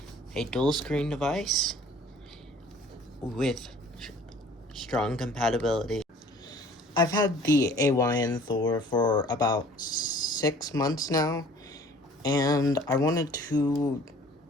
a dual screen device with strong compatibility. I've had the AYN Thor for about 6 months now, and I wanted to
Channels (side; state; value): both; normal; correlation 0.52